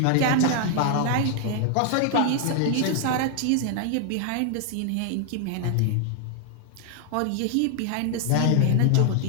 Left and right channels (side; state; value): both; different; correlation 0.00